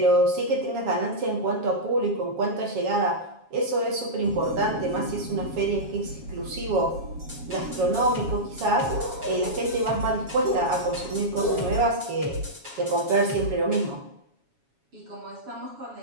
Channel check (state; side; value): late; left; 7.2 ms